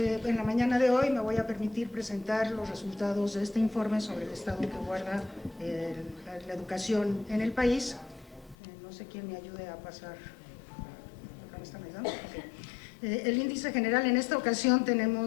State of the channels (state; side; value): drops out; right; at 8.6 s